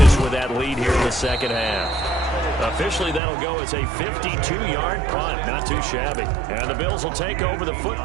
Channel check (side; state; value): left; drops out; at 3.2 s